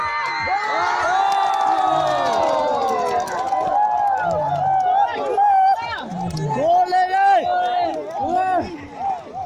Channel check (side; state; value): both; identical; correlation 1.00